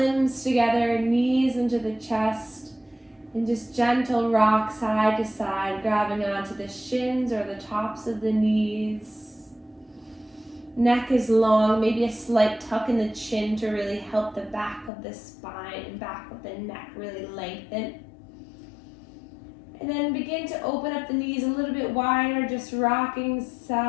together, knees into the chest, and just gentle rock side to side, grabbing onto the shins or the tops of the knees. Neck is long, maybe a slight tuck in the chin to really help the back of the spine and back of the neck really lengthen. And then begin to open up the knees a little bit wider, just rocking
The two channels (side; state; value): right; drops out; at 14.9 s